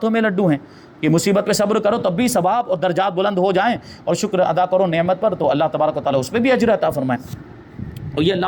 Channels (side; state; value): both; identical; correlation 1.00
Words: میں لڈو ہیں، کہ مصیبت پہ صبر کرو تب بھی ثواب اور درجات بلند ہو جائیں، اور شکر ادا کرو نعمت پر تو اللہ تبارک و تعالیٰ اس پہ بھی اجر عطا فرمائے۔ اور یہ اللہ